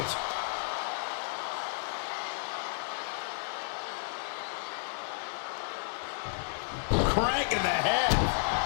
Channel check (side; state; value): right; silent; digital silence